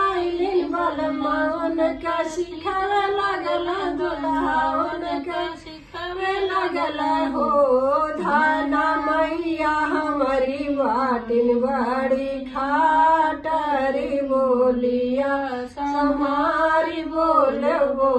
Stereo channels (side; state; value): both; identical; correlation 1.00